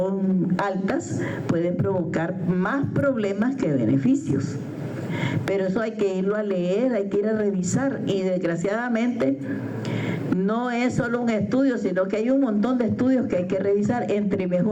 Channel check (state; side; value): identical; both; correlation 1.00